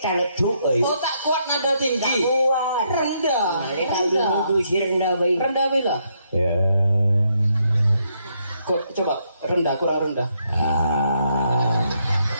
talecuk Oh tak kuat nada tinggi. Tak kuat. Rendah. Rendah baik. Rendah bila. Ya. Coba rendah, kurang rendah.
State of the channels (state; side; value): inverted; both; correlation -0.75